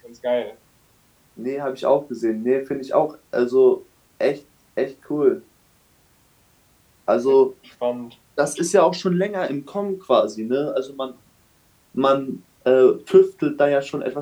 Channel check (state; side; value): identical; both; correlation 1.00